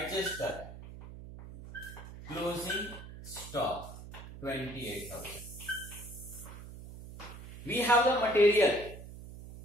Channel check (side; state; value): right; noise; hum, 13 dB below the sound